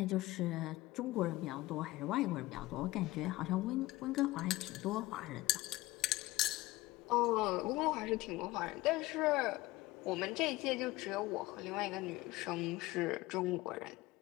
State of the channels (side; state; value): right; quieter; 19.0 dB